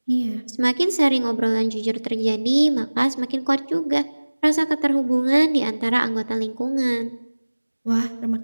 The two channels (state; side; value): inverted; both; correlation -1.00